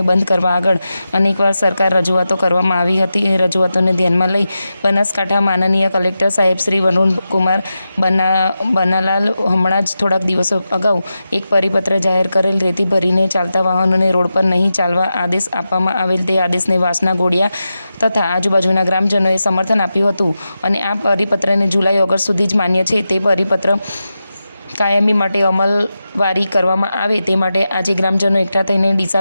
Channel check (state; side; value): inverted; both; correlation -0.91